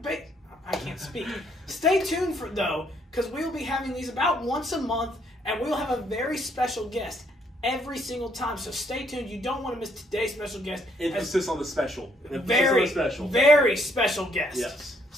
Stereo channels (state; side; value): normal; both; correlation 0.69